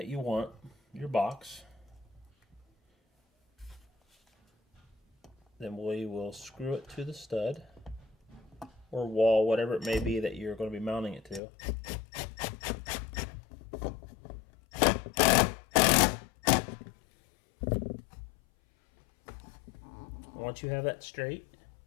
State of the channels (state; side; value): drops out; right; at 11.4 s